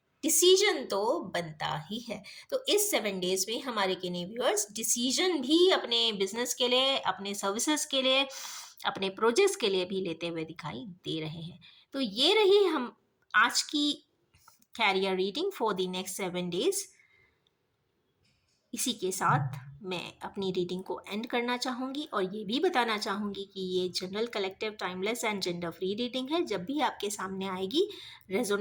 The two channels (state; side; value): identical; both; correlation 1.00